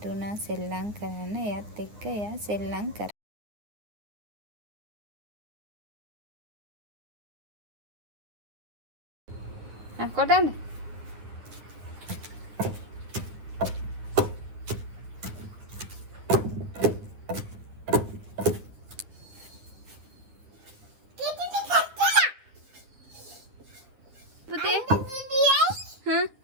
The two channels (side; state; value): left; late; 9.8 ms